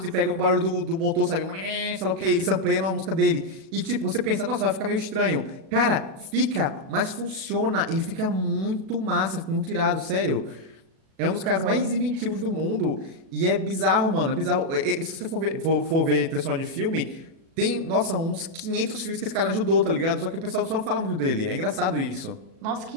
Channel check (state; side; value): late; left; 37 ms